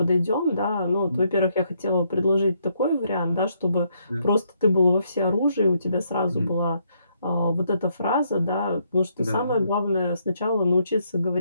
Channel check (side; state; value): both; inverted; correlation -0.74